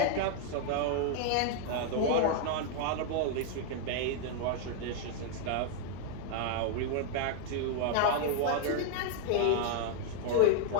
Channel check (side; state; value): both; different; correlation 0.00